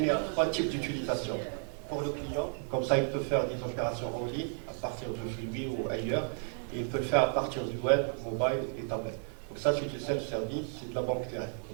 à 3 types d'utilisation. Pour le client, comme ça, il peut faire des opérations en ligne à partir de chez lui ou ailleurs. Et il peut le faire à partir du web, mobile et tablette. Donc ça, c'est du self-service, c'est de la banque directe.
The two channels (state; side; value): silent; left; 56 dB below the other